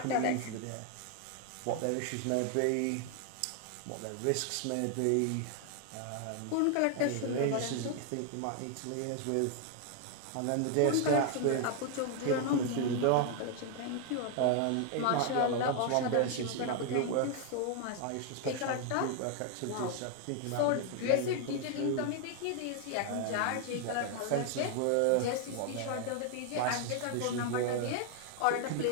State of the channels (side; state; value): both; different; correlation 0.00